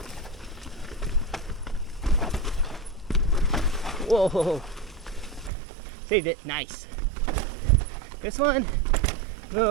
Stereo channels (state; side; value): drops out; left; at 5.5 s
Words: Whoa, saved it, nice. This one, a